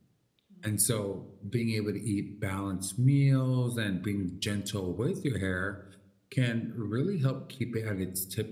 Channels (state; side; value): identical; both; correlation 1.00